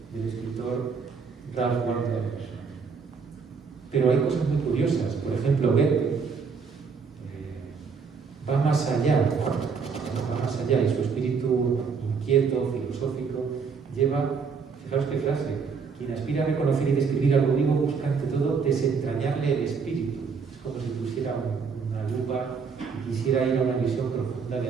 escritor Ralph Waldo Emerson. Pero hay cosas muy curiosas. Por ejemplo, Goethe va más allá, y su espíritu inquieto, filosófico, lleva, fijaos qué frase, quien aspira a reconocer y describir algo vivo busca ante todo desentrañarle el espíritu. Es como si pusiera una lupa y quisiera ir a una visión profunda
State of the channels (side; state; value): left; quieter; 5.5 dB